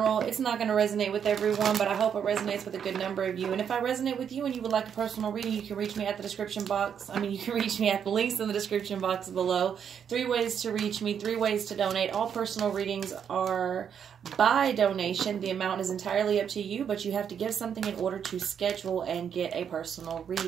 It's not going to resonate with everyone, but I hope it resonates with a good number of you. And if I resonate with you and you would like a personal reading, you can reach me at the description box. You can reach me at the links in the description box below. 3 ways to reach me, 3 ways to donate. All personal readings are by donation. The amount is entirely up to you, but you have to give something in order to schedule and get a personal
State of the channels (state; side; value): quieter; left; 8.0 dB